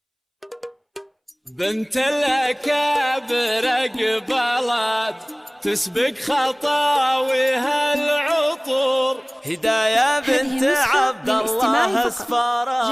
بنت الأكابر قبلت تسبق خطاويها العطور، هداية بنت عبد الله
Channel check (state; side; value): identical; both; correlation 1.00